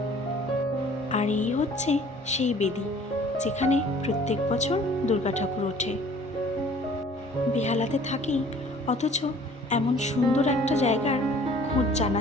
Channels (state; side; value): normal; both; correlation 0.52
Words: আর এই হচ্ছে সেই বেদি যেখানে প্রত্যেক বছর দুর্গা ঠাকুর ওঠে। বেহালাতে থাকি, অথচ এমন সুন্দর একটা জায়গার খোঁজ জানা